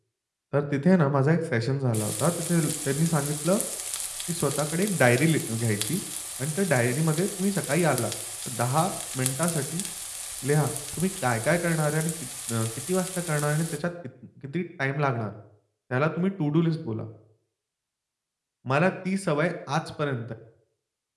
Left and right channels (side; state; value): both; identical; correlation 1.00